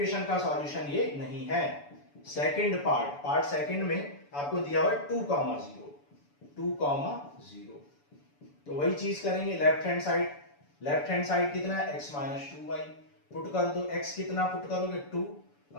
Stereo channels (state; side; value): late; right; 7.0 ms